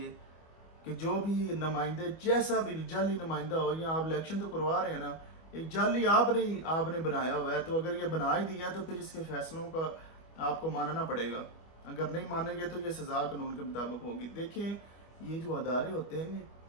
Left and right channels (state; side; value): late; right; 25 ms